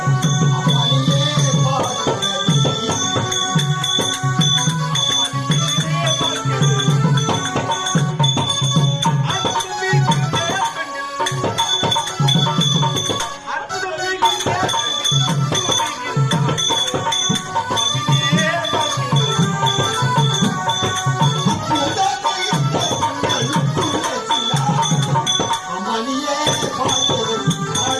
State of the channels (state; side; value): identical; both; correlation 1.00